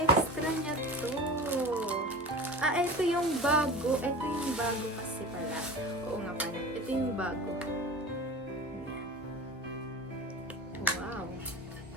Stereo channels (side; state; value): both; normal; correlation 0.33